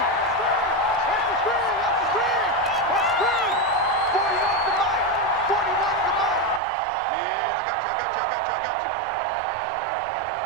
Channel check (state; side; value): drops out; left; at 6.6 s